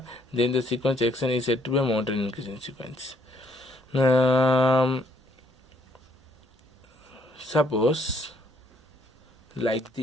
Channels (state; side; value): normal; both; correlation 0.68